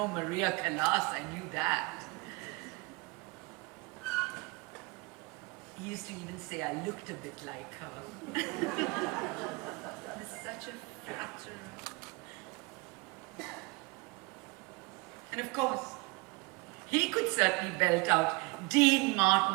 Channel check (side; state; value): left; quieter; 26.9 dB